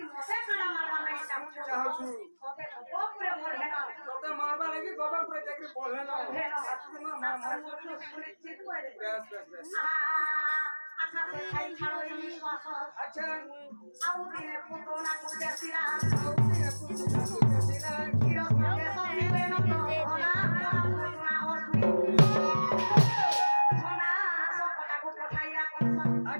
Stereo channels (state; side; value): inverted; both; correlation -1.00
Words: মতে কানা মারবা লাগি চাহছু ওকে গোপুরে মরবে না তোতে মারবা লাগি গোবর করে চাকরি পড়লে না আজকে না মা মা সুনিশ্চিত করে বেশ বেশ বেশ আচ্ছা খাই ছাড়ো এই শ্বাস আচ্ছা আউ দিনে পুতনা কুদেছিলা ওকে পুতুলা দিলা হিরো সঙ্গে সঙ্গে না ওলা পুতনা অসুরি সোনা সকটাকু পঠাইয়া কংস